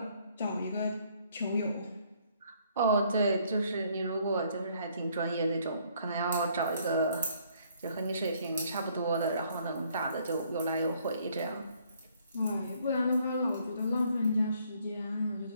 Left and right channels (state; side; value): inverted; both; correlation -0.65